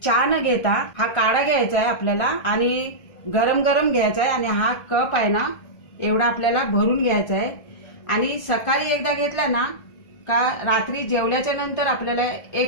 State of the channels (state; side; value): late; right; 1.4 ms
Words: चहा न घेता हा काढा घ्यायचा आहे आपल्याला, आणि गरम गरम घ्यायचा आहे. आणि हा कप आहे ना एवढा आपल्याला भरून घ्यायचा आहे. आणि सकाळी एकदा घेतला ना का रात्री जेवल्याच्या नंतर आपल्याला